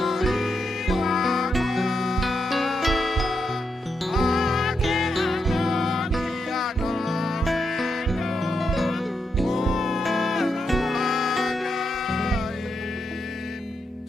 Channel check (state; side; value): normal; both; correlation 0.83